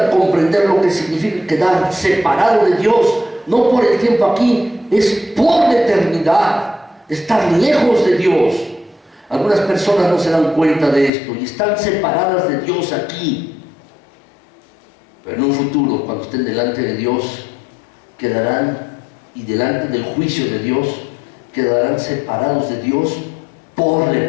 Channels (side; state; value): right; drops out; at 11.1 s